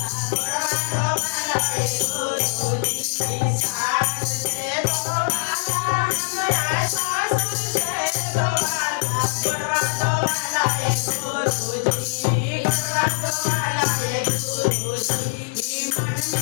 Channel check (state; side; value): silent; right; 64 dB below the other